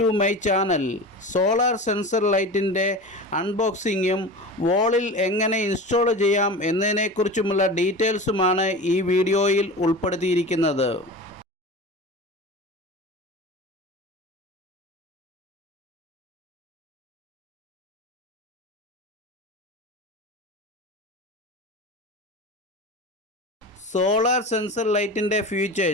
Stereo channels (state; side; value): normal; both; correlation 0.31